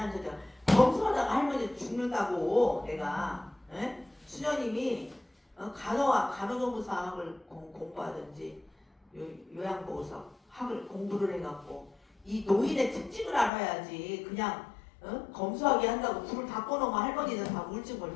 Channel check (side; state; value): right; drops out; at 13.5 s